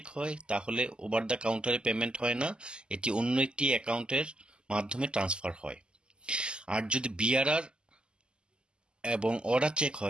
হয় তাহলে ওভার দ্য কাউন্টারে পেমেন্ট হয় না, এটি অন্য একটি অ্যাকাউন্টের মাধ্যমে ট্রান্সফার হয়। আর যদি বিআরআর এবং অর্ডার চেক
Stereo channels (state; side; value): late; left; 0.049 ms